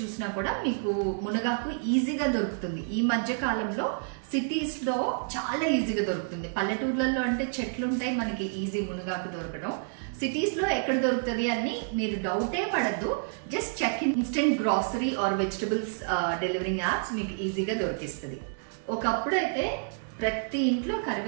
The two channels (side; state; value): left; silent; 59 dB below the other